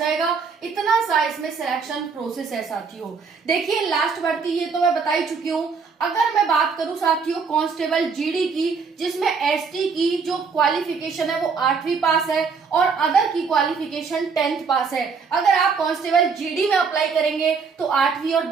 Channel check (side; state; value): left; quieter; 5.3 dB